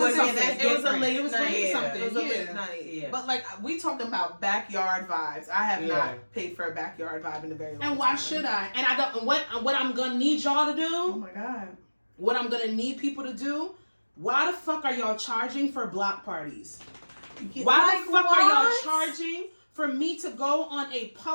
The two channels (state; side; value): inverted; both; correlation -1.00